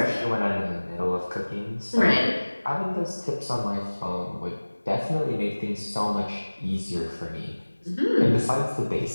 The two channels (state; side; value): inverted; both; correlation -1.00